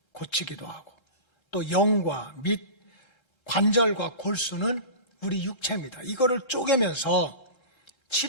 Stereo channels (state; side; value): late; right; 1.3 ms